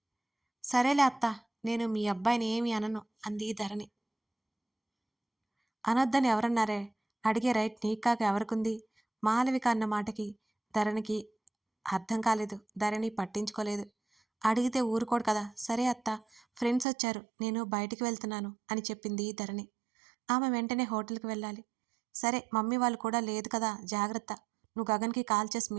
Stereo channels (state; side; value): drops out; left; at 16.9 s